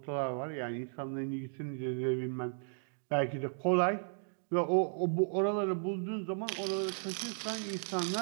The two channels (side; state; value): left; silent; digital silence